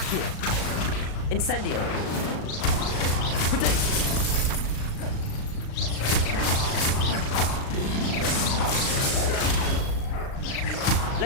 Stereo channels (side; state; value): right; late; 37 ms